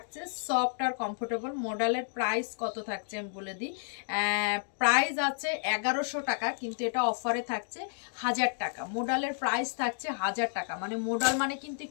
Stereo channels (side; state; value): right; silent; digital silence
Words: সফট আর কমফোর্টেবল। মডেলের প্রাইস কত থাকছে আমি বলে দিই। প্রাইস আছে 1100 টাকা, কিন্তু এটা অফারে থাকছে 1000 টাকা। মডেলের প্রাইস থাকছে 1000 টাকা, মানে মডেল মানে কিন্তু